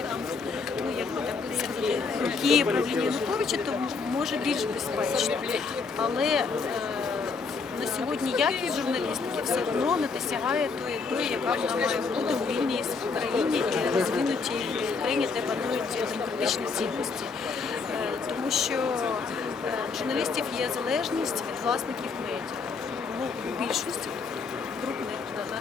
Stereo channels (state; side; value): quieter; right; 4.8 dB